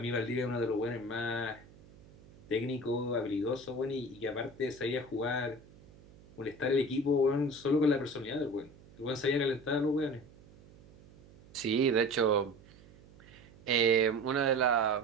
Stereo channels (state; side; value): noise; right; hum, 23 dB below the sound